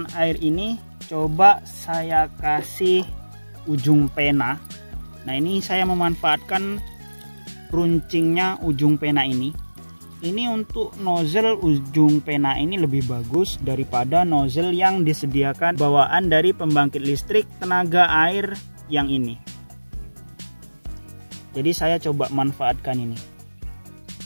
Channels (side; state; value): both; inverted; correlation -1.00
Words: air ini coba saya kasih ujung pena. Nah, ini saya memanfaatkan runcingnya ujung pena ini. Ini untuk nozzle ujung pena ini lebih bagus daripada nozzle yang disediakan bawaan dari pembangkit listrik tenaga air yang ini. Jadi saya coba manfaatkan ini.